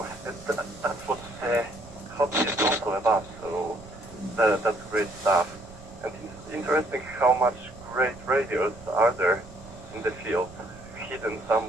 that's what hobby is also about. So that's great stuff. And it's interesting how much great radios are there in the field, hidden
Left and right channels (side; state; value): right; noise; rumble, 19 dB below the sound